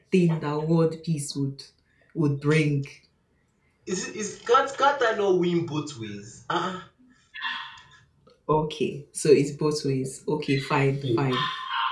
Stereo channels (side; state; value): both; identical; correlation 1.00